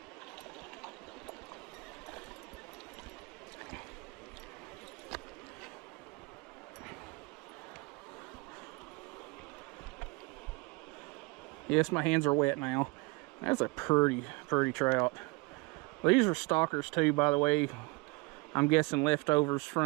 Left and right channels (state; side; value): quieter; left; 26.6 dB